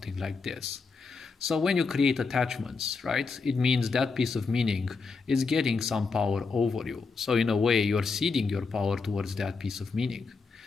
like this. So when you create attachments, right, it means that piece of meaning is getting some power over you. So in a way, you're ceding your power towards that piece of meaning.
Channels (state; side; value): quieter; right; 4.6 dB